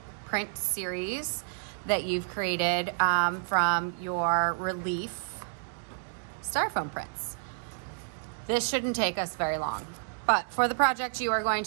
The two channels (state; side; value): silent; left; digital silence